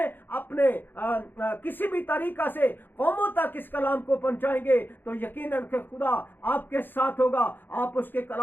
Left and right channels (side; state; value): right; late; 0.095 ms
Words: اپنے کسی بھی طریقہ سے قوموں تک اس کلام کو پہنچائیں گے تو یقیناً کہ خدا آپ کے ساتھ ہوگا، آپ اس کے